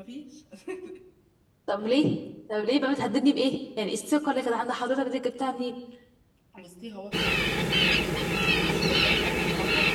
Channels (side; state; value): both; identical; correlation 1.00